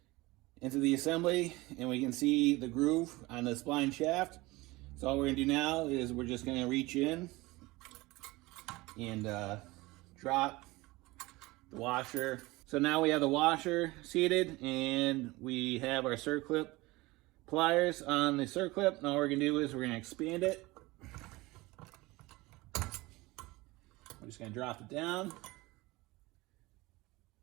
into the assembly, and we can see the groove on the spline shaft. So all we're gonna do now is we're just gonna reach in and drop the washer. So now we have the washer seated, and we have our circlip pliers on the circlip. Now all we're gonna do is we're gonna expand it. I'm just gonna drop it down.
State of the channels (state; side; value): quieter; left; 21.4 dB